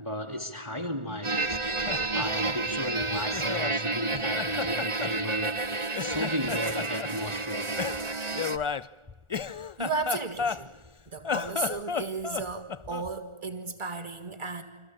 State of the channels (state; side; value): late; left; 1.4 ms